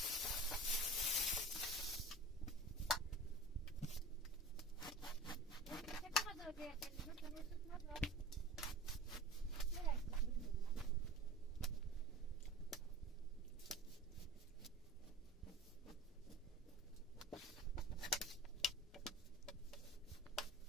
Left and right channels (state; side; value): normal; both; correlation 0.37